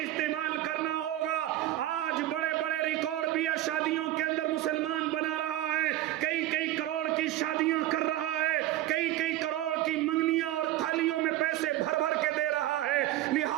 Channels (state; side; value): quieter; left; 14.5 dB